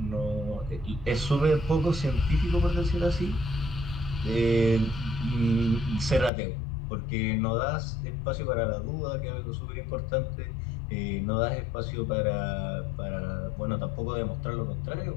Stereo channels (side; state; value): right; drops out; at 6.3 s